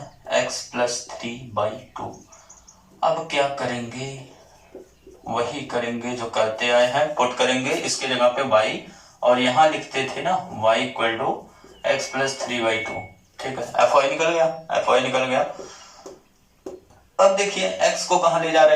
x plus 3/2। अब क्या करेंगे? वही करेंगे जो करते आए हैं, पुट करेंगे इसके जगह पे y, और यहाँ लिखते थे ना y equal to x plus 3/2, ठीक है। fy निकल गया, fy निकल गया। अब देखिए x को कहाँ ले जा रहा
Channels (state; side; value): identical; both; correlation 1.00